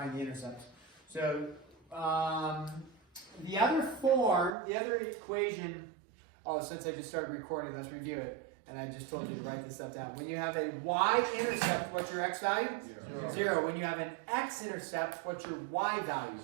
the intercepts. So, the other form, the other equation, since I just started recording, let's review it. And I just told you to write this stuff down. When you have a y-intercept, what's your x value? 0. When you have an x-intercept, what's your y value?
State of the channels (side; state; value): left; drops out; at 4.5 s